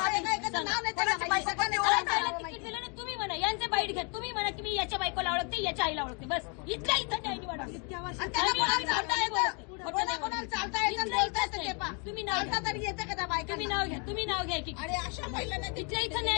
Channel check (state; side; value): quieter; right; 35.2 dB